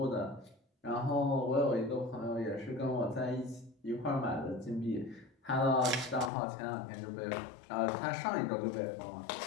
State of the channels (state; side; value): drops out; right; at 6.3 s